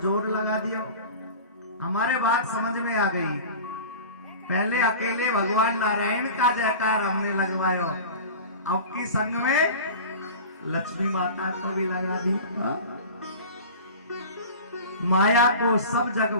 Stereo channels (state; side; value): inverted; both; correlation -0.35